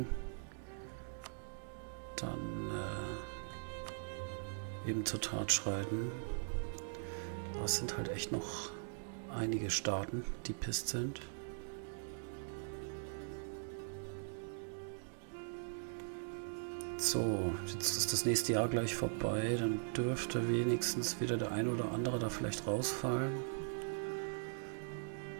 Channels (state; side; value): silent; left; digital silence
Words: dann eben zur Tat schreiten. Aber es sind halt echt noch einige Staaten, die pisst sind. So, jetzt ist das nächste Jahr gleich vorbei, dann dürfte wenigstens wieder der eine oder andere da vielleicht rausfallen.